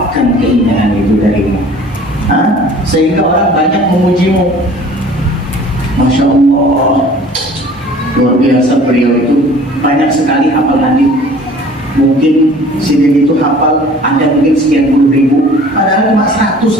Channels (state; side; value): normal; both; correlation 0.48